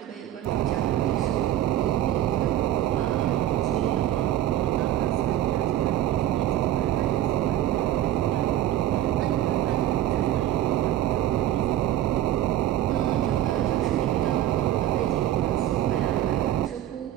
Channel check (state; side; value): quieter; left; 12.6 dB